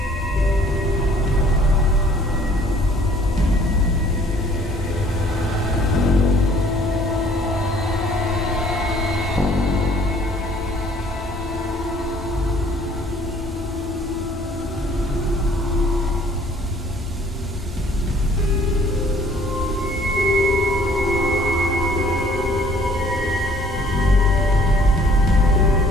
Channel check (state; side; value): normal; both; correlation 0.57